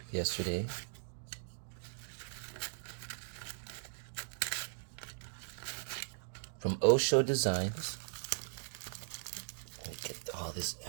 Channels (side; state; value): left; silent; digital silence